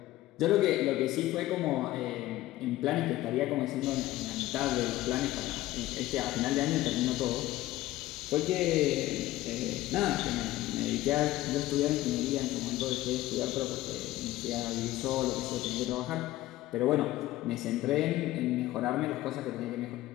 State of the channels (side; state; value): right; quieter; 16.1 dB